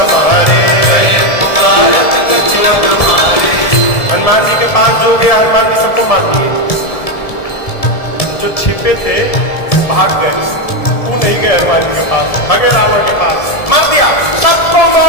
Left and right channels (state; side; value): late; right; 1.7 ms